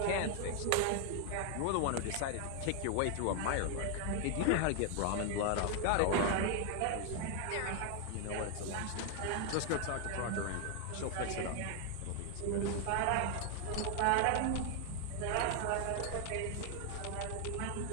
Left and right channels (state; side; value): different; both; correlation 0.00